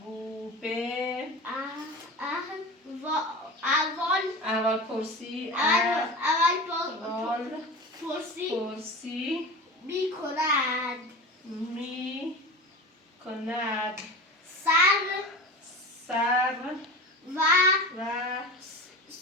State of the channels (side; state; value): both; normal; correlation 0.31